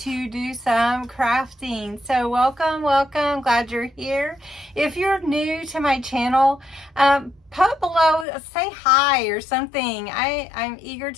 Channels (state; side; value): drops out; right; at 8.2 s